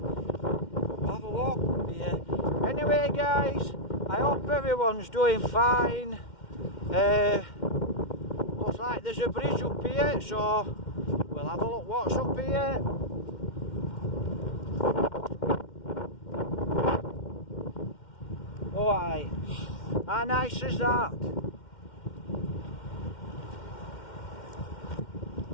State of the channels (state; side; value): late; right; 2.1 ms